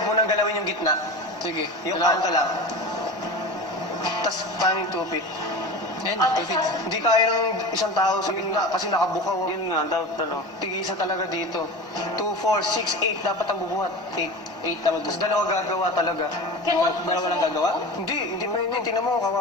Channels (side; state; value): both; normal; correlation 0.31